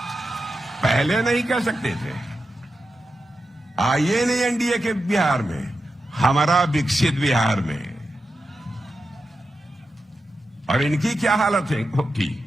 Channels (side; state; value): both; normal; correlation 0.89